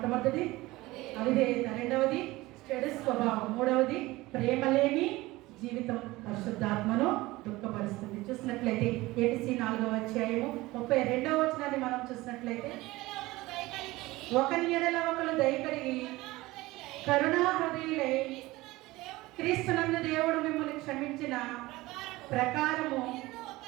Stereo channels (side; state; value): left; quieter; 19.6 dB